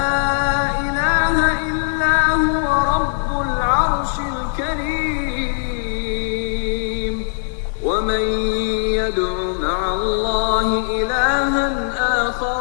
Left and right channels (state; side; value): silent; right; digital silence